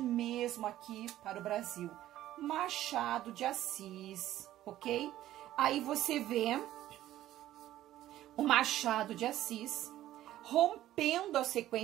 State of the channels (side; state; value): left; quieter; 13.7 dB